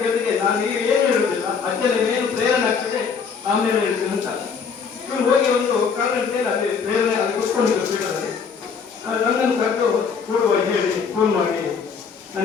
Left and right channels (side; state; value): right; quieter; 6.0 dB